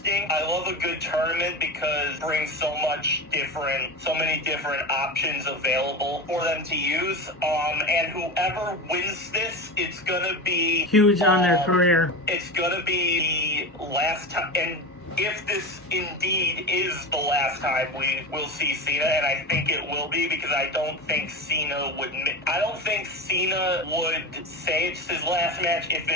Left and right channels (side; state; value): both; normal; correlation 0.24